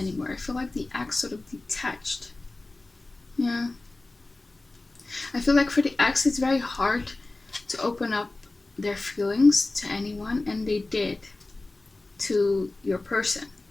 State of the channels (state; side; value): quieter; right; 3.1 dB